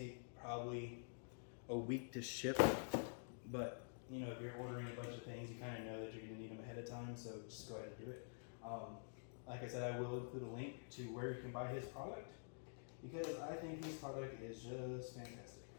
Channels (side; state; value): right; silent; digital silence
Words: probably a week to ship. But you know, if you're ordering a bunch of things, you kind of know that you're going to need them ahead of time, so just go ahead and do it. Like I said, I will include a link to where you can buy his product, because I think his product is just fantastic.